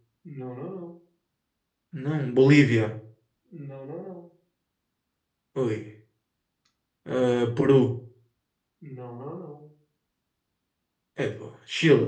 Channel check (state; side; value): identical; both; correlation 1.00